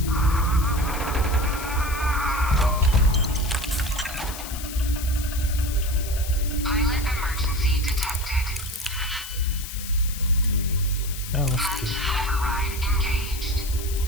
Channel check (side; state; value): left; noise; hiss, 10 dB below the sound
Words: Pilot emergency detected. Oh, that's good. Override engaged.